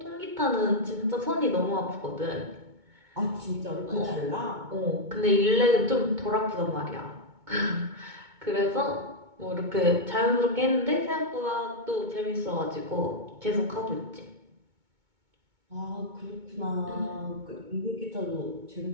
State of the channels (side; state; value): left; late; 2.2 ms